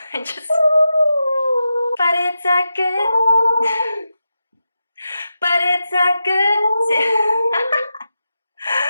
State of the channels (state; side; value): inverted; both; correlation -0.89